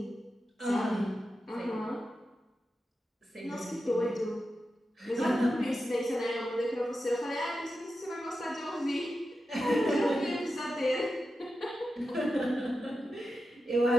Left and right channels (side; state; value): both; normal; correlation 0.90